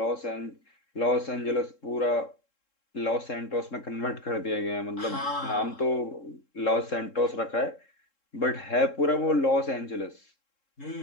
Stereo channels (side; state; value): right; late; 3.7 ms